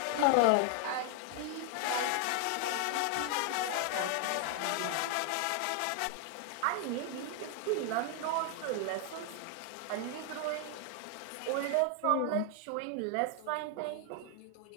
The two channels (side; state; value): both; different; correlation 0.00